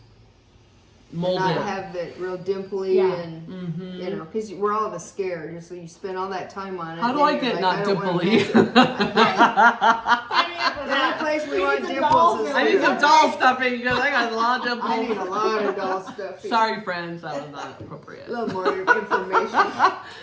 Mold not it. have it real dimply Yeah. and you know, because we're all of us scared. So you spend all that time on it. How do and I you're get like, not I don't wanna dimply? mess with it. The only place we want need some dolls dimples is I need here. some doll stuffing because I got a lot of dimples. I need a lot of doll stuff. Sorry, friends, that was not appropriate. A little more information.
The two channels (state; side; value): identical; both; correlation 1.00